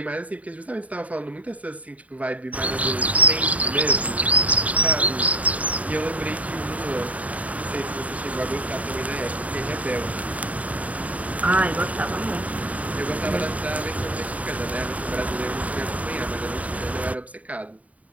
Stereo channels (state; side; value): late; left; 0.069 ms